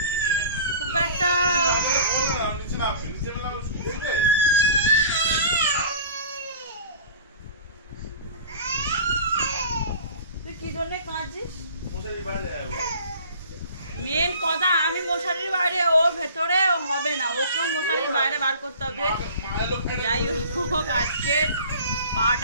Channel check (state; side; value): inverted; both; correlation -0.43